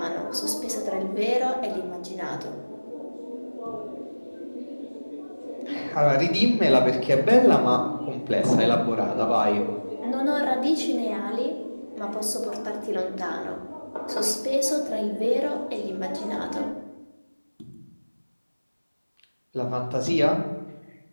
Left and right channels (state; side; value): inverted; both; correlation -1.00